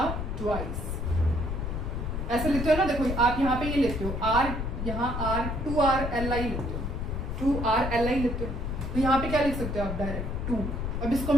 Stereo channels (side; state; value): left; noise; rumble, 3 dB below the sound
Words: ट्वाइस, ऐसे लेते हो ना, देखो आप यहाँ पे ये लेते हो R, यहाँ R2RLi लेते हो, 2RLi लेते हो। तो यहाँ पे क्या लिख सकते हो आप, डायरेक्ट 2। अब इसको